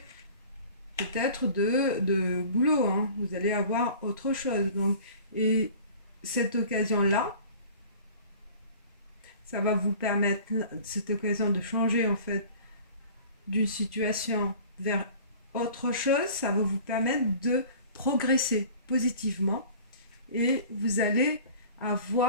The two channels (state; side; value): inverted; both; correlation -0.45